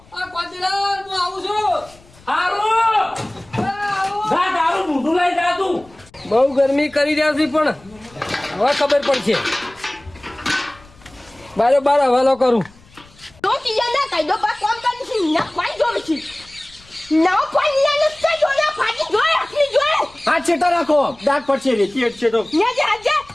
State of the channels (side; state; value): left; noise; rumble, 26 dB below the sound